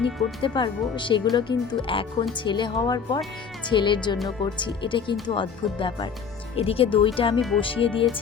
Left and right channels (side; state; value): right; quieter; 6.3 dB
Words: করতে পারবো, সেগুলো কিন্তু এখন ছেলে হওয়ার পর ছেলের জন্য করছি। এটা কিন্তু অদ্ভুত ব্যাপার। এদিকে দইটা আমি বসিয়ে